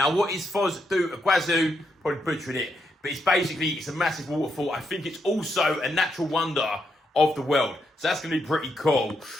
what is Foz do Iguaçu? Probably butchering it, but it's a massive waterfall. I think it's also a natural wonder of the world. So that's going to be pretty cool.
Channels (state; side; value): normal; both; correlation 0.80